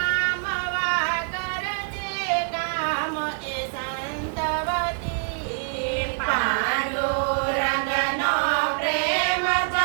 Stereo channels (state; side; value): silent; left; digital silence